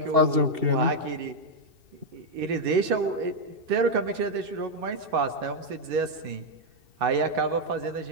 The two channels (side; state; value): left; late; 2.6 ms